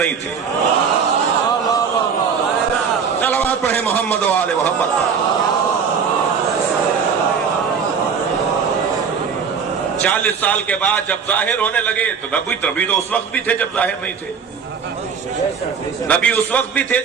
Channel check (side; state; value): left; quieter; 6.3 dB